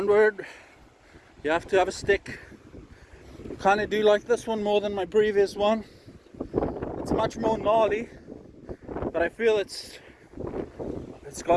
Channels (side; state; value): both; identical; correlation 1.00